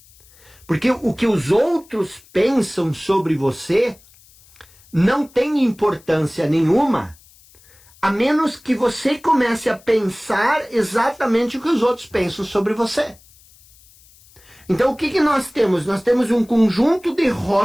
Porque o que os outros pensam sobre você não tem importância nenhuma, a menos que você comece a pensar exatamente o que os outros pensam sobre você. Então o que nós temos? Nós temos um conjunto de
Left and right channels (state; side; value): noise; left; hiss, 27 dB below the sound